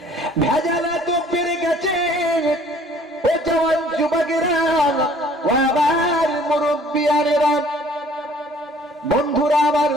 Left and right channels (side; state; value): both; normal; correlation 0.55